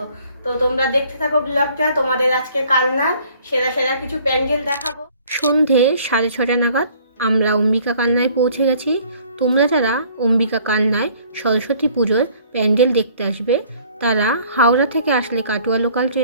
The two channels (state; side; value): inverted; both; correlation -0.57